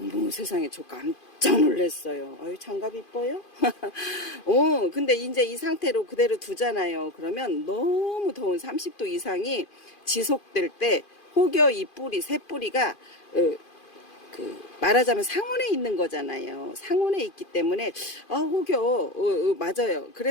세상에, 저 깜짝 놀랐어요. 아유, 장갑 이뻐요? 근데 이제 이 상태로 그대로 두잖아요. 그러면 너무 더운 30도 이상이 지속될 때 혹여 이 뿌리, 새 뿌리가 말하자면 상온에 있는 거잖아요. 상온에 있기 때문에 혹여 맞아요.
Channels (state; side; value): late; right; 2.5 ms